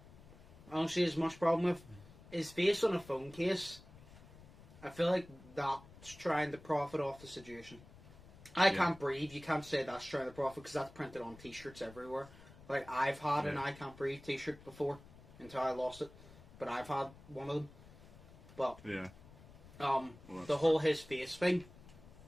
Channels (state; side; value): noise; left; rumble, 20 dB below the sound